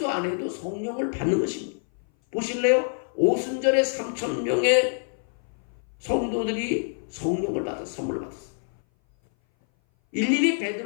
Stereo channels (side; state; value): right; silent; 58 dB below the other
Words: 안 해도 성령을 받는 것입니다. 보실래요? 오순절에 3,000명의 성도들이 성령을 받아 선물을 받았어요. 일일이